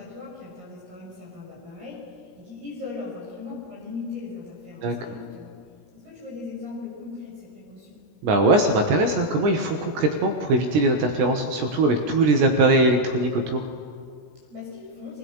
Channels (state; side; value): late; left; 17 ms